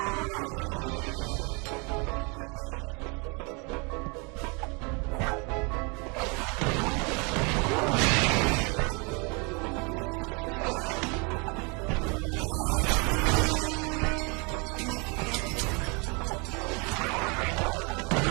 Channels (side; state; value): left; quieter; 31.3 dB